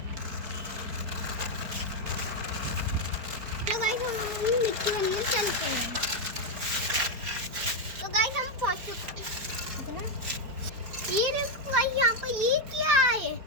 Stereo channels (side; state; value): left; late; 4.6 ms